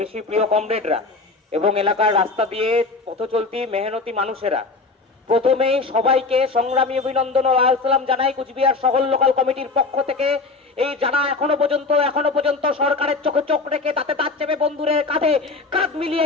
বেশি প্রিয় কমরেডরা এবং এলাকার রাস্তা দিয়ে পথ চলতি মেহনতি মানুষেরা, প্রথমেই সবাইকে সংগ্রামী অভিনন্দন ও লাল সালাম জানাই কুচবিহার শহর লোকাল কমিটির পক্ষ থেকে। এই যারা এখনো পর্যন্ত সরকারের চোখে চোখ রেখে তাতে তার চেপে বন্ধুরের কাঁধে কাঁধ মিলিয়ে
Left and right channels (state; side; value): quieter; right; 3.9 dB